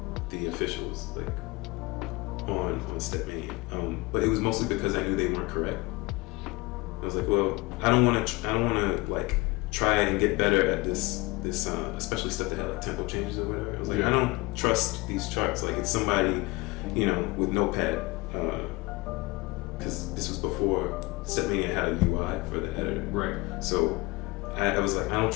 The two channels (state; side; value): quieter; right; 23.3 dB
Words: the officials like on Stepmania. But it was mostly because I knew they weren't correct. I was like, well, I don't want to like try and get better at this especially stuff that had like tempo changes or whatever. I was like, I don't trust these charts. Like it's somebody, with Notepad, because this was before Stepmania had a UI for the editor. Right. So I was like, I don't